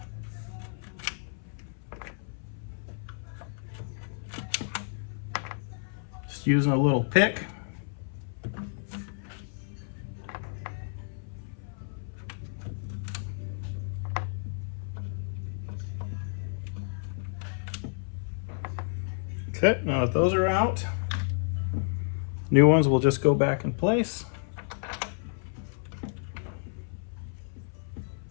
Just using a little pick. Okay, now that those are out, new ones will just go back in place.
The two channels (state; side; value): silent; right; 57 dB below the other